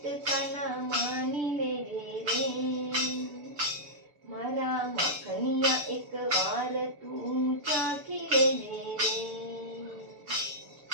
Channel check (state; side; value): late; left; 6.8 ms